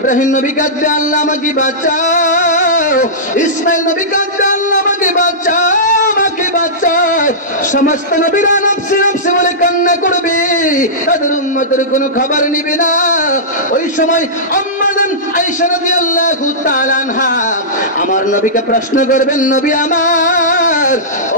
নবী কাঁদবে, আল্লাহ আমাকে বাঁচাও। ইসমাইল নবী কাঁদবে, আল্লাহ আমাকে বাঁচাও, আমাকে বাঁচাও। সমস্ত নবীরা নফসি নফসি বলে কান্না করবে, তাদের উম্মতের কোনো খবর নিবে না। ওই সময় আম্মা আয়েশা রাদিয়াল্লাহু তাআলা আনহা আমার নবীকে প্রশ্ন করবেন, নবী আমার,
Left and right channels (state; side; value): normal; both; correlation -0.16